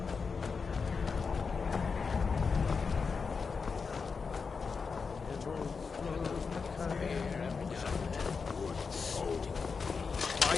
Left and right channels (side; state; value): right; quieter; 5.2 dB